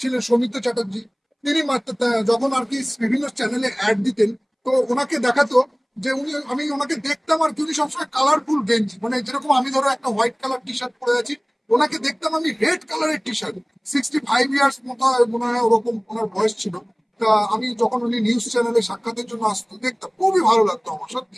ছিলেন, সৌমিত্র চ্যাটার্জি, তিনি মাত্র যখন আর কি বিভিন্ন চ্যানেলে অ্যাড দিতেন, তো ওনাকে দেখাতো যে আমি ওনাকে দেখতাম আর কি, উনি সবসময় কালারফুল গেঞ্জি, মানে যেরকম আমি ধরো একটা হোয়াইট কালার টি শার্ট পরে আছি, ওনাকে দেখতাম আমি রেড কালারের টি শার্ট। 65 ইয়ার্স মতো মনে হয় ওরকম ওনার বয়স ছিল। তা আমি যখন উনি নিউজ চ্যানেলে সাক্ষাতের জন্য আসতো, দেখতাম খুবই ভালো লাগতো আমার,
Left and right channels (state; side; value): identical; both; correlation 1.00